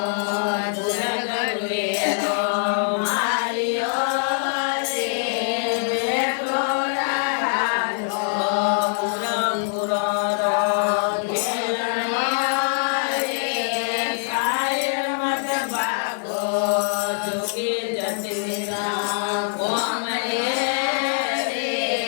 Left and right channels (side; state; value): right; silent; digital silence